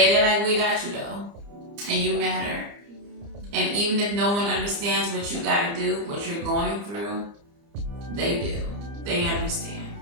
they're like, we got you though. And you matter. And even if no one understands what you gotta do, what you're going through, they do. They understand.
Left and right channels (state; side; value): late; left; 30 ms